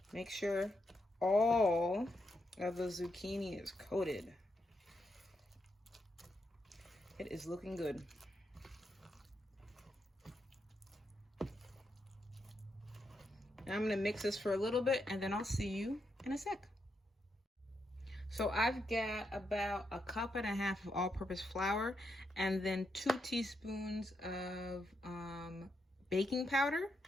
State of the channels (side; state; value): both; normal; correlation 0.82